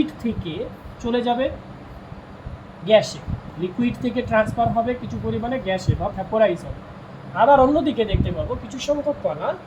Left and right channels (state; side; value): identical; both; correlation 1.00